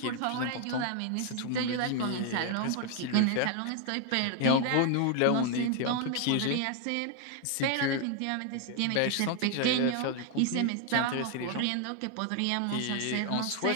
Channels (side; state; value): both; different; correlation 0.00